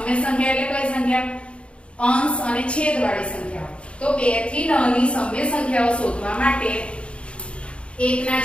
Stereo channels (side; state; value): right; late; 0.059 ms